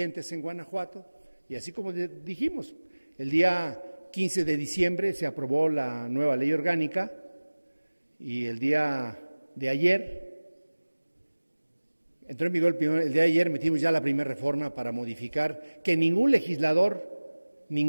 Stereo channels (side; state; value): both; inverted; correlation -1.00